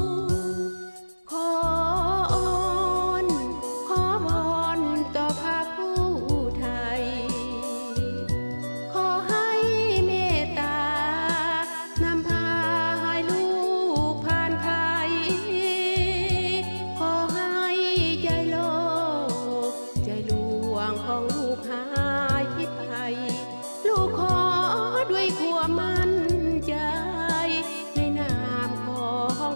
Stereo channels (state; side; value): inverted; both; correlation -1.00